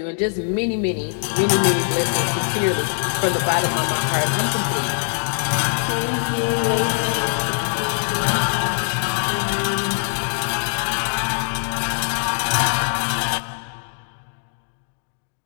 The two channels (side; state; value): right; silent; digital silence